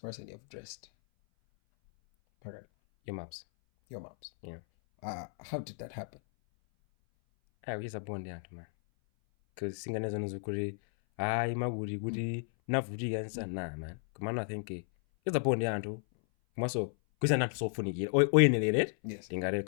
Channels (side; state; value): right; silent; 55 dB below the other